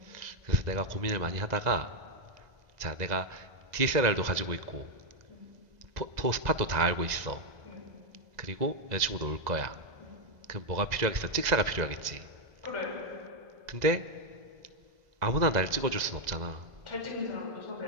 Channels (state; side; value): late; left; 2.0 ms